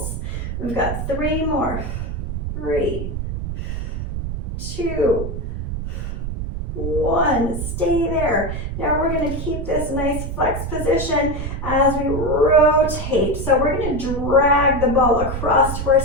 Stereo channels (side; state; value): right; noise; rumble, 4 dB below the sound